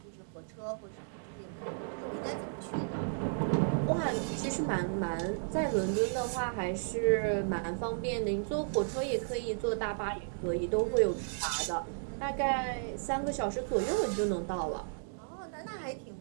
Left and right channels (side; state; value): left; silent; digital silence